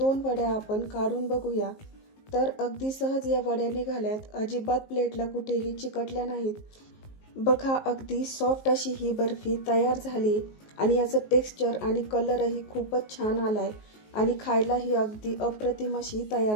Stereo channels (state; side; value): late; right; 19 ms